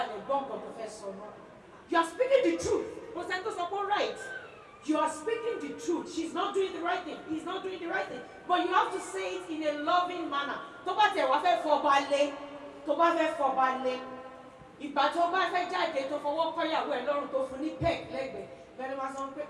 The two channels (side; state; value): both; identical; correlation 1.00